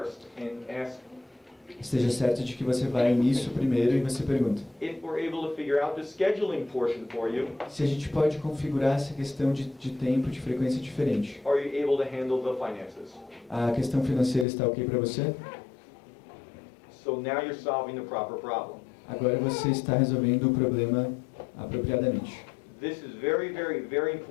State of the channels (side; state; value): right; drops out; at 14.5 s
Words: and ask esteja certo de que você vai nisso primeiro e você pergunta. if we're able to figure out the scheduling portion for you, Se a gente pode configurar essa questão de tempo, de frequência diferente. are you able to handle the finances? A questão financeira está ok para você? So now you're solving the proper problem. Agora você está resolvendo o problema apropriadamente. This is very, very, very